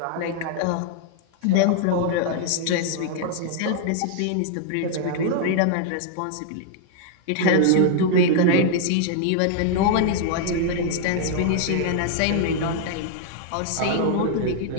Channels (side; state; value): both; different; correlation 0.00